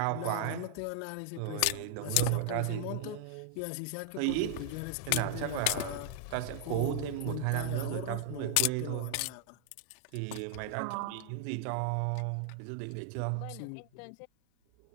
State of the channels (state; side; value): different; both; correlation 0.00